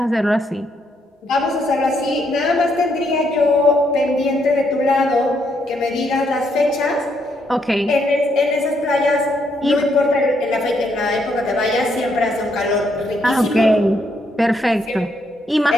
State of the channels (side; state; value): both; normal; correlation 0.75